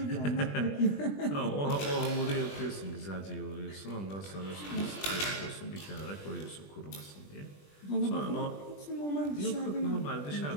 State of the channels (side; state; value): right; late; 20 ms